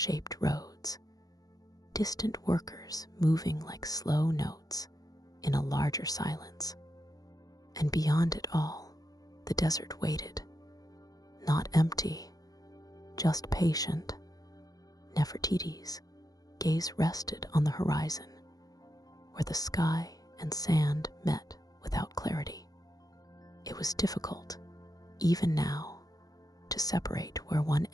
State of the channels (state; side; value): late; right; 0.18 ms